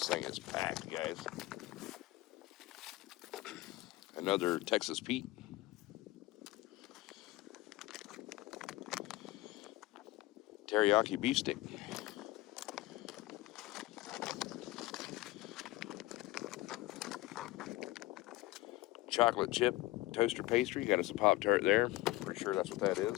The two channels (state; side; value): quieter; right; 18.6 dB